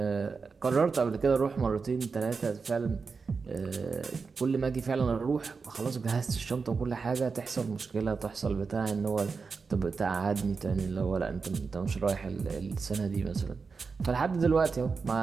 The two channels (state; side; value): quieter; left; 4.9 dB